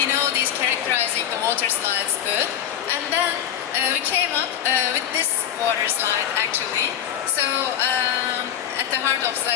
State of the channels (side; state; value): right; quieter; 10.1 dB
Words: know these characterizing the water slides good, and then we came up with this water slide actually. So at the heart of